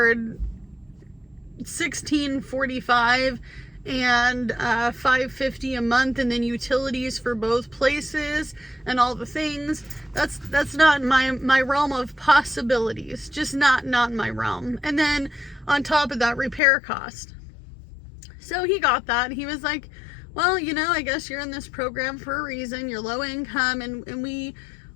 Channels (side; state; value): right; drops out; at 16.6 s